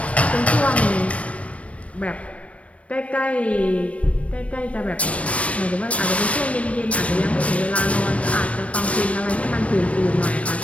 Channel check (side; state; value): right; late; 0.064 ms